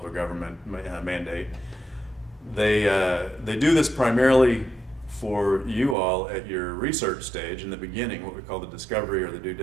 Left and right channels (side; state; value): left; drops out; at 6.0 s